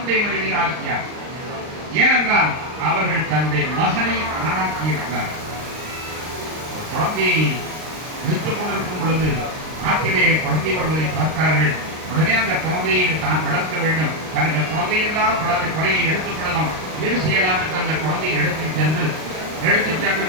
மனைவி ஆசியா. ஏனென்றால் அவர்கள் தன்னுடைய மகனை ஆணாக்கி இருக்கிறார். குழந்தையை விடுத்துக் கொண்டிருக்கும் பொழுது ஆற்றிலே குழந்தை வருவதை பார்த்தார்கள். உடனே அந்த குழந்தையை தான் வளர்க்க வேண்டும், தனக்கு குழந்தையில்லாத குறையை எடுத்துக் கொள்ளலாம், வீடு செய்யலாம் என்று அந்த குழந்தையை எடுத்துச் சென்று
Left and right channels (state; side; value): late; left; 39 ms